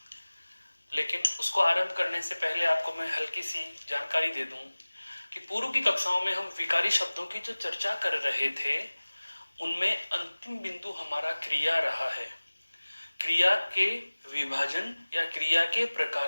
लेकिन उसको आरंभ करने से पहले आपको मैं हल्की सी जानकारी दे दूं कि पूर्व की कक्षाओं में हम विकारी शब्दों की जो चर्चा कर रहे थे उनमें अंतिम बिंदु हमारा क्रिया रहा है। क्रिया के विभाजन या क्रिया के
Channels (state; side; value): inverted; both; correlation -1.00